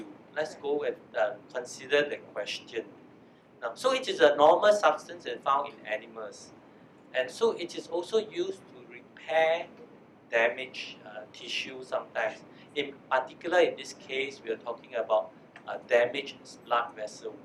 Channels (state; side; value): identical; both; correlation 1.00